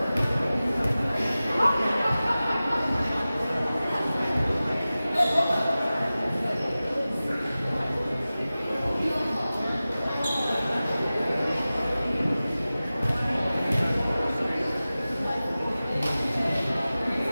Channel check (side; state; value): both; inverted; correlation -0.96